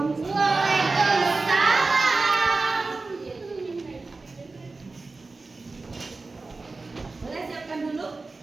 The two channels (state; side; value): quieter; left; 3.7 dB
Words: Waalaikumsalam. Boleh siapkan dulu?